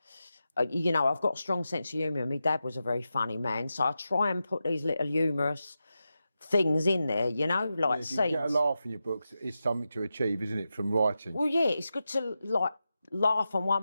You know, I've got a strong sense of humour. My dad was a very funny man, so I try and put these little humorous things in there, you know, like scenes. You get a laugh in your books, it's something to achieve, isn't it, from writing? Well, yeah, it's good to like laugh on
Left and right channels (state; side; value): inverted; both; correlation -0.90